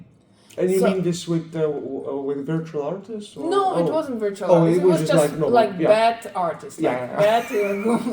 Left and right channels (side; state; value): both; identical; correlation 1.00